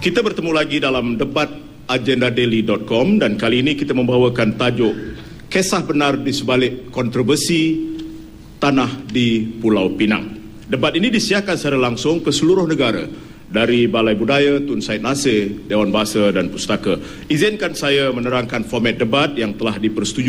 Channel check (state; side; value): identical; both; correlation 1.00